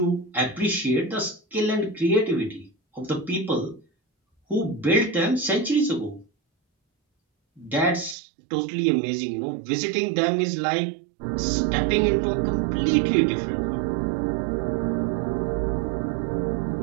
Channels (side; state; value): left; drops out; at 8.2 s